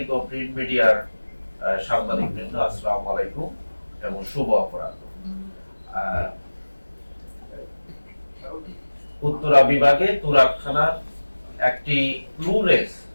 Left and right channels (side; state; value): both; inverted; correlation -1.00